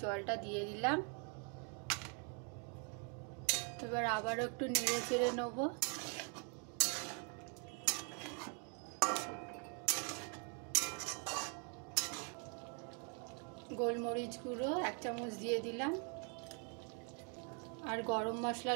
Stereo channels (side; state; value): left; quieter; 39.5 dB